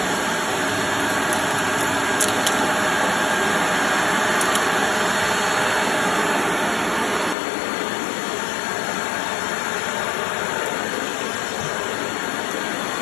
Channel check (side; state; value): right; drops out; at 7.4 s